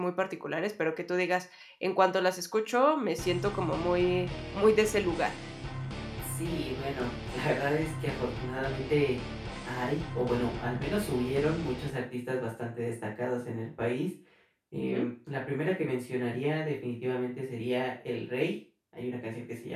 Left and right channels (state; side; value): identical; both; correlation 1.00